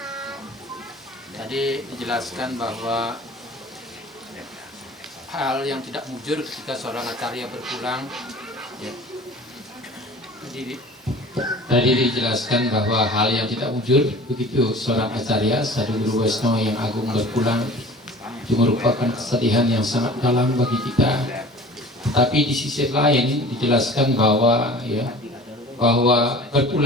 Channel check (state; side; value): normal; both; correlation 0.43